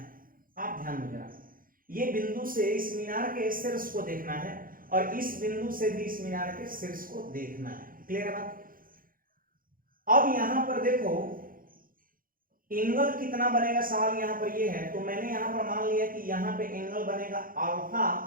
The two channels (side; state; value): left; late; 0.41 ms